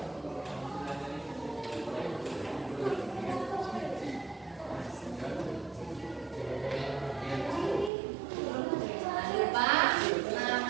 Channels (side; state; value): left; drops out; at 7.9 s